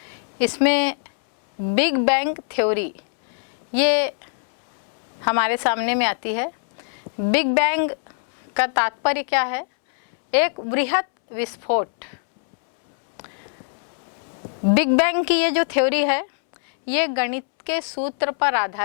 इसमें बिग बैंग थ्योरी ये हमारे सामने में आती है। बिग बैंग का तात्पर्य क्या है? एक बृहत विस्फोट। बिग बैंग की ये जो थ्योरी है, ये गणित के सूत्र पर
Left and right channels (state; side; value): silent; right; 64 dB below the other